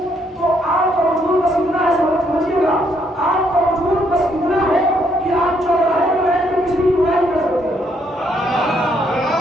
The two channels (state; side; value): normal; both; correlation 0.71